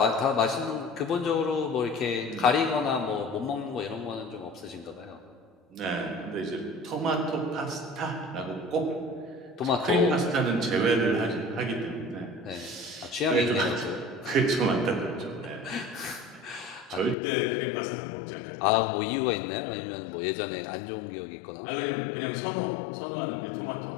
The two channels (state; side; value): drops out; right; at 17.2 s